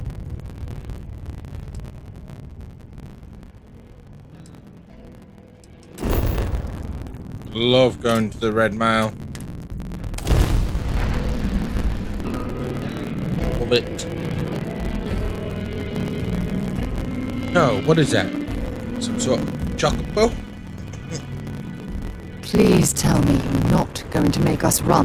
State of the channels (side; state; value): both; identical; correlation 1.00